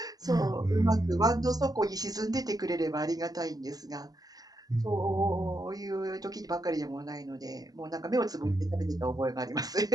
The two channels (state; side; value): late; left; 0.18 ms